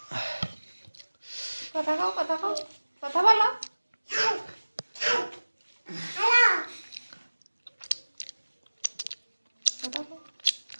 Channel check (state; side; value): inverted; both; correlation -1.00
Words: কথা কও কথা বলো।